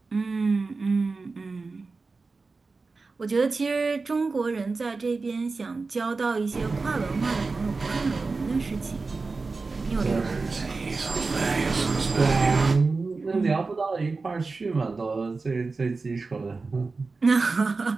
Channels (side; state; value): left; quieter; 4.0 dB